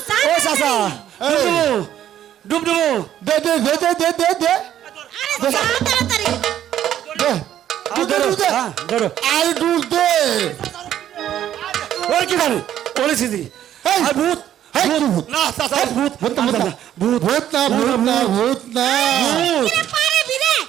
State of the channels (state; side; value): quieter; left; 11.2 dB